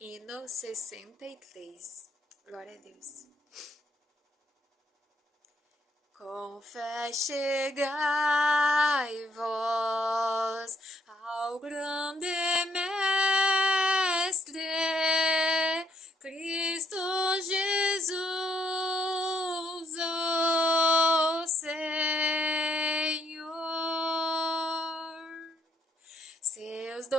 63. Glória a Deus. Com fé chegai vós ao grande Mestre, Cristo Jesus, o Senhor. Seus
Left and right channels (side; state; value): both; normal; correlation 0.71